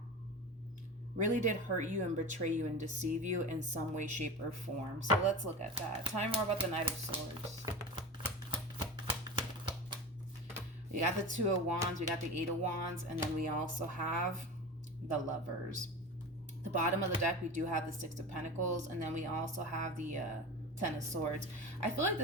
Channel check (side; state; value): both; normal; correlation 0.29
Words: really did hurt you and betray you and deceive you in some way, shape, or form. So let's look at that. Tell me more about the Knight of Swords. We got the Two of Wands, we got the Eight of Wands, and then we also have the Lovers. The bottom of the deck, we do have the Six of Pentacles, and then we also have the Ten of Swords. I feel like